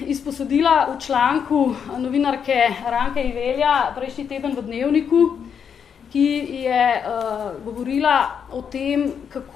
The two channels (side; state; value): right; quieter; 7.4 dB